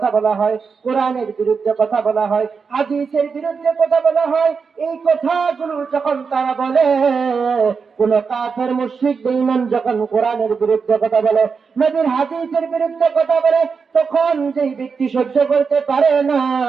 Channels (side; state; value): left; quieter; 5.4 dB